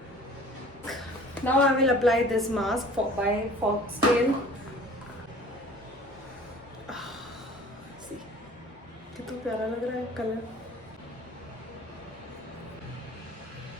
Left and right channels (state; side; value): normal; both; correlation 0.47